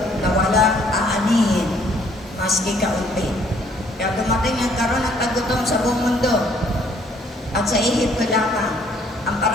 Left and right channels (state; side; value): normal; both; correlation 0.63